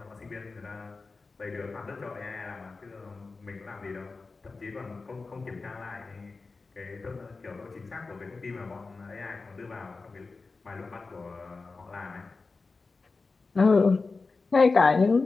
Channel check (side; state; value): right; quieter; 4.0 dB